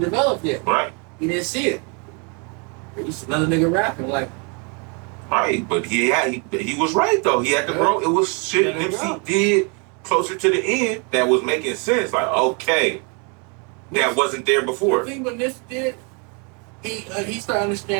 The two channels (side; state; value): left; quieter; 34.6 dB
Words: developed yet. Right. He didn't see it. He was another nigga rapping, like. Right, but he was right though. He had to grow. It was shit Nipsey did closer to the end that was making sense. Like, okay, that wasn't there before. The thing what Nipsey did, he started